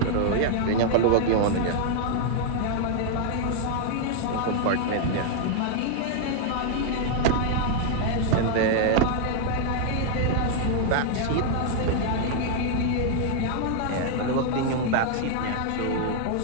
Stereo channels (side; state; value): both; different; correlation 0.00